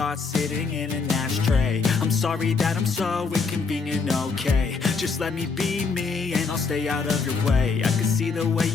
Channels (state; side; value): quieter; right; 4.8 dB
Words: sitting in an ashtray. I'm sorry that I'm so inconvenient, okay. Just let me be me and I'll stay out of your way. I can see the way